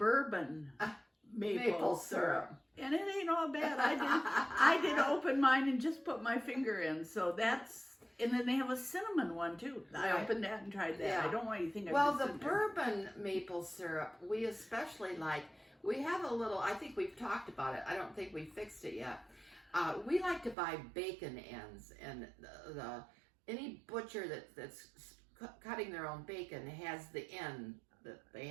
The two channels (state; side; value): drops out; left; at 20.6 s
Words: maple syrup. And it ain't all bad. I did open mine and just put my finger in. So that's, and then they have a cinnamon one too. I opened that and tried that. Yeah. I don't want you to think Well, the bourbon maple syrup, we especially like. We have a little, I think we've talked about it. I don't think we fixed it yet. We like to buy bacon ends, and any butcher that's cutting their own bacon has the end that they